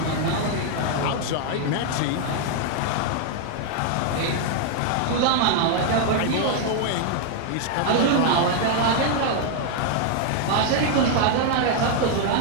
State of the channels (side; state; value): both; different; correlation 0.00